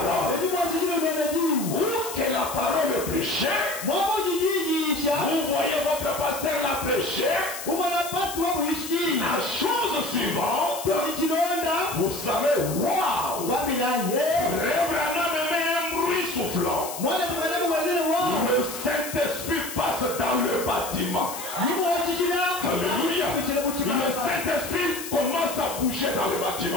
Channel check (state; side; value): noise; left; hiss, 9 dB below the sound